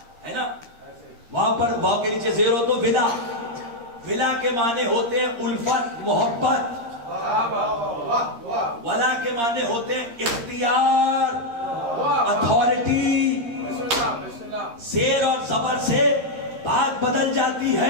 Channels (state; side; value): late; left; 13 ms